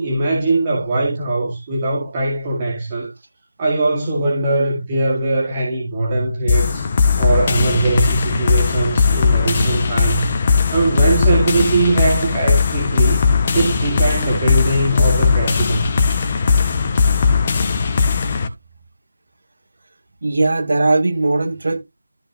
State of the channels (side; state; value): both; inverted; correlation -0.81